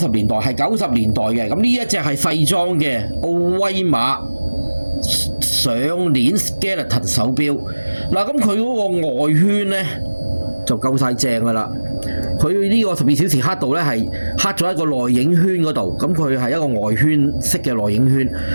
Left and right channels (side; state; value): both; inverted; correlation -1.00